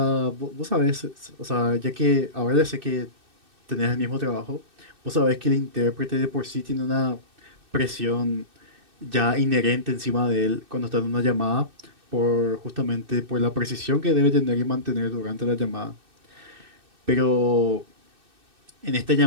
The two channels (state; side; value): late; left; 2.6 ms